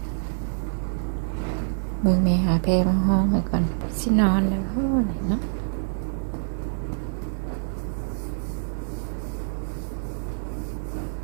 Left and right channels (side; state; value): left; silent; digital silence